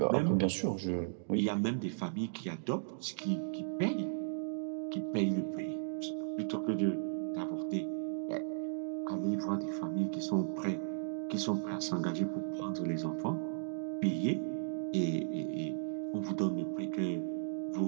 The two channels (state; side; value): silent; left; digital silence